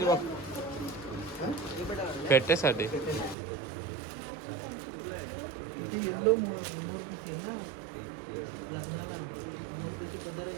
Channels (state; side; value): drops out; left; at 3.4 s